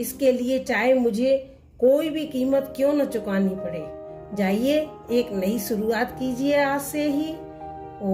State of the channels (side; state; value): both; identical; correlation 1.00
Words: लिए चाहे मुझे कोई भी कीमत क्यों न चुकानी पड़े। जाइए एक नई शुरुआत कीजिए आज से ही।